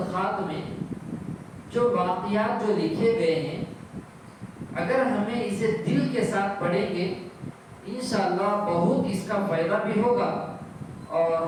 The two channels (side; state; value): both; identical; correlation 1.00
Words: میں جو واقعات جو لکھے گئے ہیں، اگر ہمیں اسے دل کے ساتھ پڑھیں گے انشاءاللہ بہت اس کا فائدہ بھی ہوگا اور